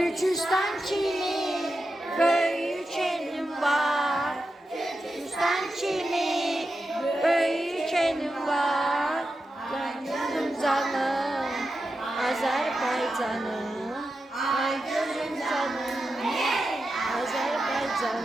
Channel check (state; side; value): normal; both; correlation 0.90